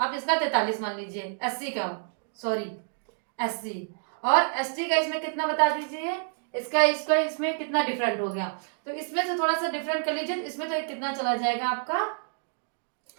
इसका 43 मान लीजिए। एससी का, सॉरी एससी और एसटी का इसमें कितना बता दीजिए, इसका इसमें कितना डिफरेंट हो गया, तो इसमें से थोड़ा सा डिफरेंट कर लीजिए। इसमें तो कितना चला जाएगा आपका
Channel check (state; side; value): silent; left; digital silence